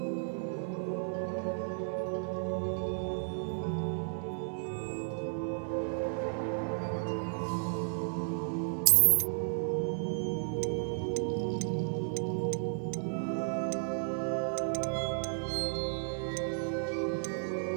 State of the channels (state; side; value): silent; left; 56 dB below the other